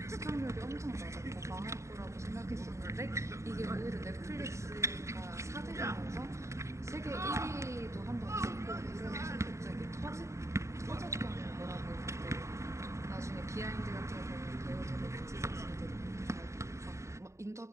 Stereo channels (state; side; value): late; left; 0.14 ms